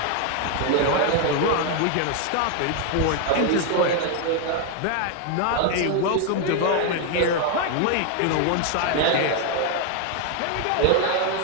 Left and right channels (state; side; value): different; both; correlation 0.01